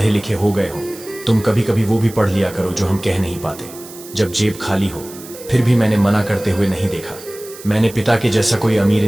लिखे हो गए हो तुम, कभी कभी वो भी पढ़ लिया करो जो हम कह नहीं पाते। जब जेब खाली हो फिर भी मैंने मना करते हुए नहीं देखा। मैंने पिता के जैसा कोई अमीर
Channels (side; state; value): right; noise; hiss, 17 dB below the sound